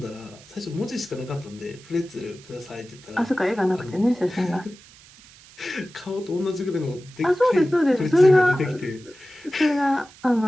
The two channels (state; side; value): noise; right; hiss, 23 dB below the sound